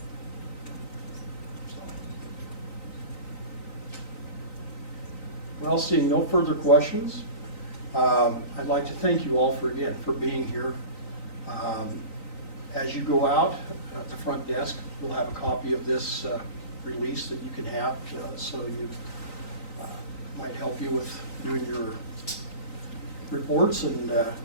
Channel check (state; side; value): late; right; 3.9 ms